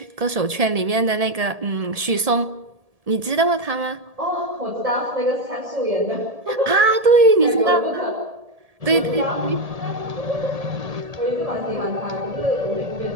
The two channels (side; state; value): left; late; 1.7 ms